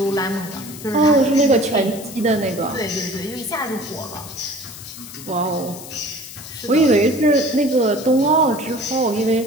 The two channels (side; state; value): left; noise; hiss, 14 dB below the sound